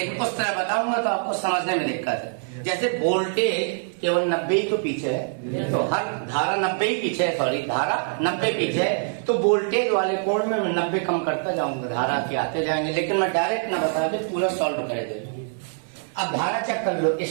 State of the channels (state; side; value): silent; left; 62 dB below the other